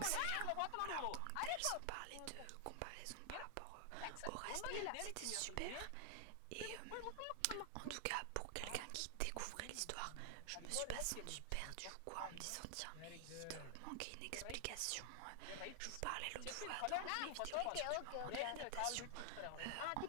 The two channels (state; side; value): different; both; correlation 0.00